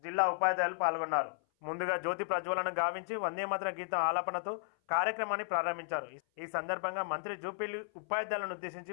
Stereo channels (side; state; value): right; silent; 55 dB below the other